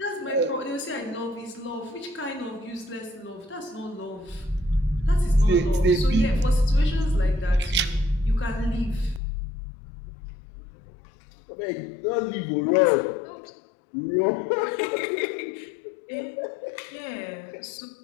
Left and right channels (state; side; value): drops out; right; at 9.2 s